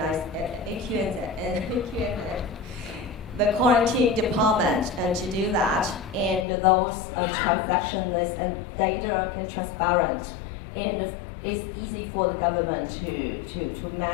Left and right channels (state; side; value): drops out; right; at 6.5 s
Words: the quarantine department to do that, and those transactions and data and transparent, and it's easy for the government to